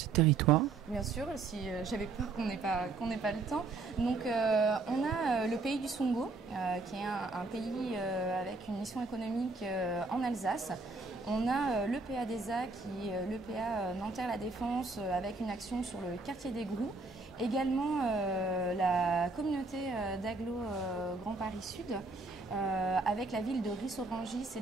territoires? Bien sûr, si j'avais peur qu'on n'ait pas le temps. Donc on a le pays du Songo, qui est un pays avec une mission économique en Alsace. On a l'EPA DESA, qui est l'EPA Nanterre-La Défense, avec une action sur le quartier des Grous. Également la communauté d'Aglo Grand Paris Sud, avec la ville de Ris-Orangis, et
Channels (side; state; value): left; quieter; 3.7 dB